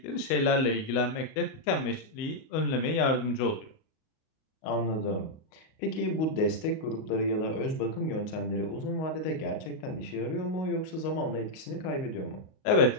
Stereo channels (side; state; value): right; late; 38 ms